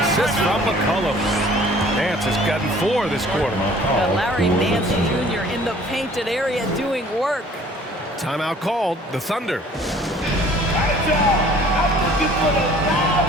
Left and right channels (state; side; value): normal; both; correlation 0.53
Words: from McCollum. Nance has gotten 4 this quarter. Larry Nance Jr. in the painted area doing work. Timeout called. The Thunder. All right, y'all. I'm looking for the loud